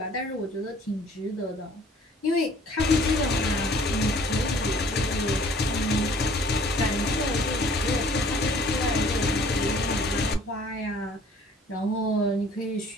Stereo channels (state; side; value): normal; both; correlation 0.54